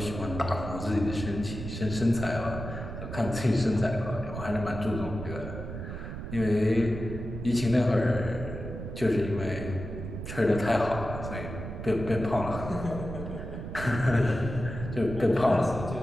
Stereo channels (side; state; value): right; noise; rumble, 8 dB below the sound